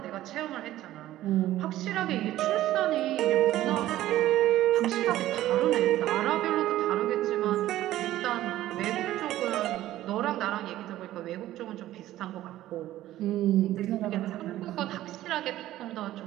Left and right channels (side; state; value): left; quieter; 14.4 dB